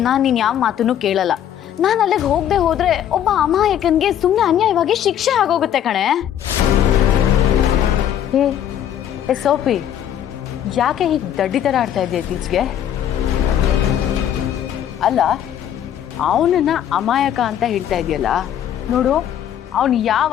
ನಾನು ನೀನು ಯಾವ ಮಾತನ್ನು ಕೇಳಲ್ಲ. ನಾನು ಅಲ್ಲಿಗೆ ಹೋಗದೆ ಹೋದ್ರೆ ಒಬ್ಬ ಅಮಾಯಕನ್ಗೆ ಸುಮ್ಮನೆ ಅನ್ಯಾಯವಾಗಿ ಶಿಕ್ಷೆ ಆಗೋಗುತ್ತೆ ಕಣೆ. ಏ ಸೋಫಿ, ಯಾಕೆ ಹೀಗೆ ದಡ್ಡಿ ಥರ ಆಡ್ತಾ ಇದೆಯಾ ಇತ್ತೀಚೆಗೆ? ಅಲ್ಲ, ಅವನನ್ನ ಅಮಾಯಕ ಅಂತ ಹೇಳ್ತಾ ಇದೆಯಲ್ಲ, ನೋಡು, ಅವನು ಯಾವ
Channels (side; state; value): right; quieter; 10.3 dB